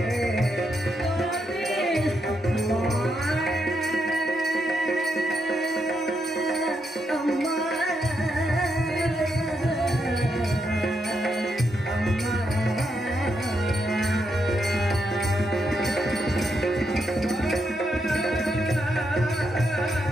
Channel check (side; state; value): both; normal; correlation 0.81